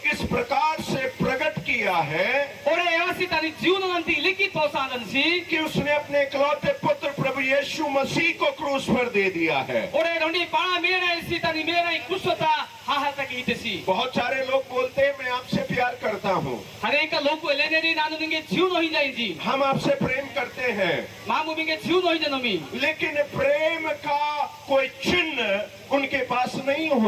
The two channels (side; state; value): both; identical; correlation 1.00